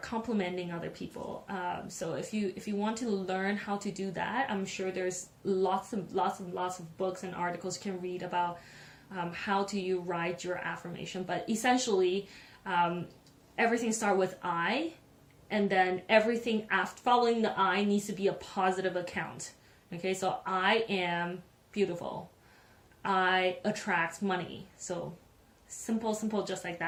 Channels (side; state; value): both; identical; correlation 1.00